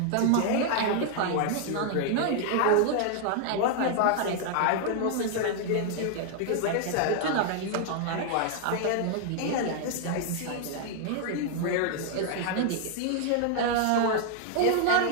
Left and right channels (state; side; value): different; both; correlation 0.00